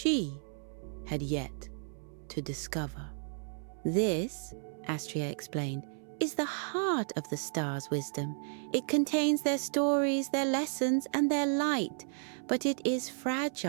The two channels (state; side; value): silent; left; 56 dB below the other